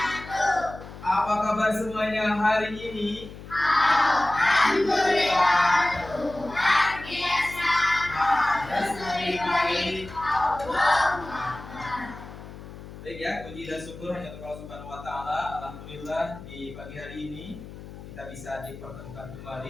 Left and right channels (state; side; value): noise; left; hum, 14 dB below the sound